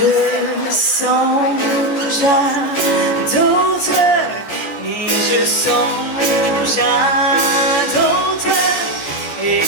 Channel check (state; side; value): late; right; 14 ms